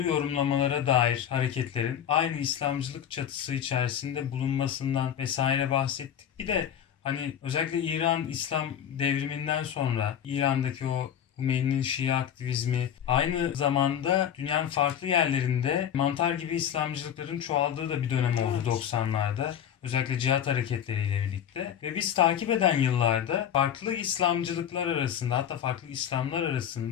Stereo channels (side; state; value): right; quieter; 9.4 dB